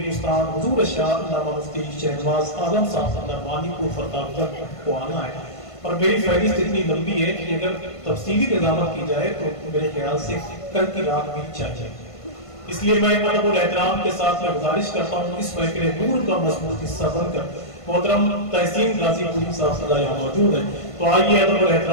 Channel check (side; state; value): right; late; 1.5 ms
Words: حضور شاہ علامہ مفتی شہنواز عالم صاحب نعمانی کو فرتاب تک کو آنا ہے، اور میری فہرست اتنی لمبی ہے کہ اگر تفصیلی نظامت کی جائے تو میرے خیال سے کل کی رات بھی چاہیے۔ اس لیے میں ادب اور احترام کے ساتھ میں گزارش کرتا ہوں اس محفل نور کا مضبوط حصہ بن کر محترم تحسین غازی پوری صاحب صلی اللہ یہاں موجود ہیں، تو آئیے ادب اور